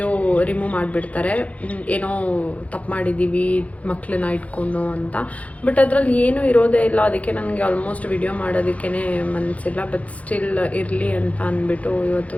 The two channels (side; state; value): right; late; 0.067 ms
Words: ರಿಮೂವ್ ಮಾಡಿಬಿಡ್ತಾರೆ, ಏನೋ ತಪ್ಪು ಮಾಡಿದ್ದೀವಿ ಮಕ್ಕಳನ್ನ ಇಟ್ಕೊಂಡು ಅಂತ. ಬಟ್ ಅದರಲ್ಲಿ ಏನೂ ಇರೋದೇ ಇಲ್ಲ. ಅದಕ್ಕೆ ನನಗೆ ಆಲ್ಮೋಸ್ಟ್ ವಿಡಿಯೋ ಮಾಡೋದಕ್ಕೇ ಮನಸ್ಸಿಲ್ಲ. ಬಟ್ ಸ್ಟಿಲ್ ಇರಲಿ ಅಂತ ಅಂದ್ಬಿಟ್ಟು